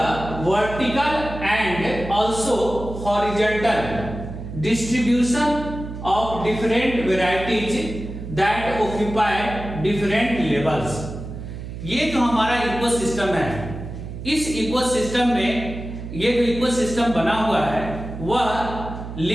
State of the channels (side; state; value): right; noise; hum, 9 dB below the sound